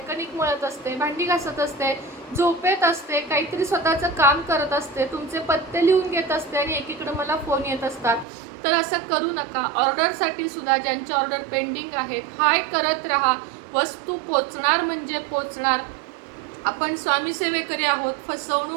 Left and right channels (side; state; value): left; drops out; at 8.2 s